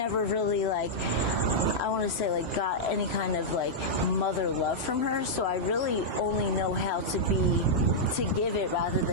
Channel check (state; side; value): normal; both; correlation -0.08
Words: really, like, I want to say, like, got any kind of, like, mother love from her. So I really only know how to give it rather